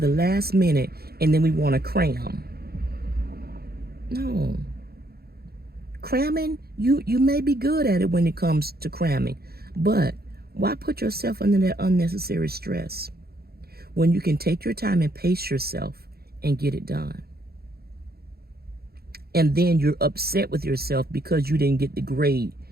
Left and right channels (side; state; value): left; late; 0.45 ms